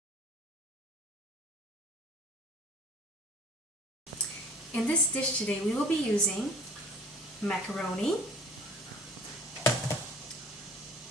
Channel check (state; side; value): normal; both; correlation 0.48